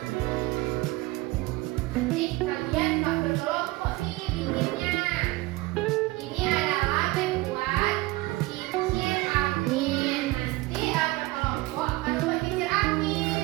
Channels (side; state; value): left; quieter; 20.5 dB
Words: Nih, kalian nggak berkelompok nih bikinnya. Ini adalah membuat kincir angin. Nanti berkelompok akan membuat kincir